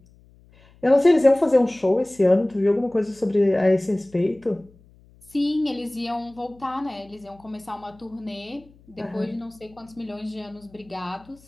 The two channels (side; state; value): left; noise; hum, 28 dB below the sound